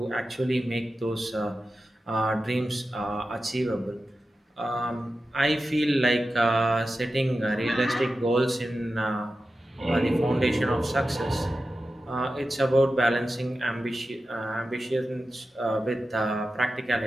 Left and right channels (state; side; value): normal; both; correlation 0.92